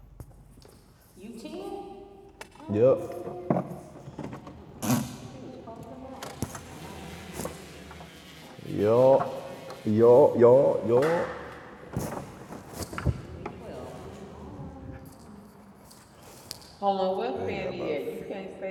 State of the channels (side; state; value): both; identical; correlation 1.00